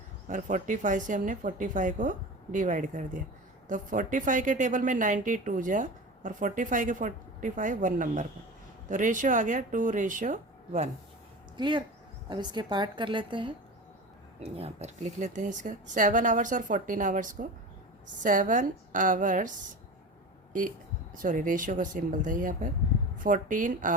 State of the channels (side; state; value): both; normal; correlation 0.31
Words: और 45 से हमने 45 को डिवाइड कर दिया, तो 45 के टेबल में 92 जा और 45 के 45 1 नंबर पर, तो रेशियो आ गया 2:1। क्लियर। अब इसके पार्ट कर लेते हैं, यहाँ पर लिख लेते हैं इसका 7 आवर्स और 14 आवर्स को। 7 आवर्स सॉरी रेशियो का सिंबल था यहाँ पर, 14